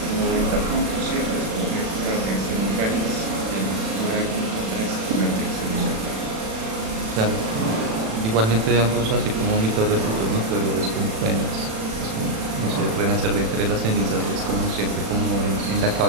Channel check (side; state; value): left; late; 36 ms